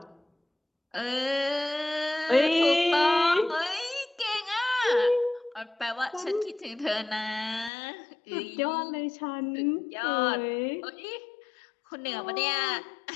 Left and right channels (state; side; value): drops out; right; at 7.7 s